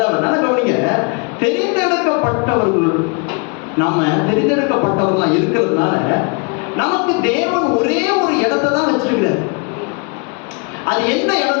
நல்லா கவனிங்க. தெரிந்தெடுக்கப்பட்டவர்கள், நாம தெரிந்தெடுக்கப்பட்டவர்களா இருக்கிறதுனால நமக்கு தேவன் ஒரே ஒரு இடத்தை தான் வச்சிருக்கிறார். அது எந்த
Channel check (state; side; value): quieter; right; 33.3 dB